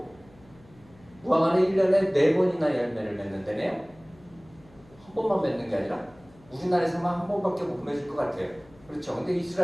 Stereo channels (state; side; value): noise; left; hum, 26 dB below the sound